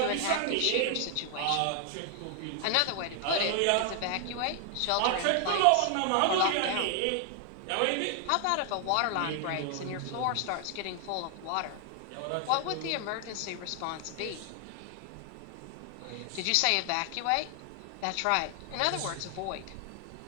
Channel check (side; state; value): both; different; correlation 0.00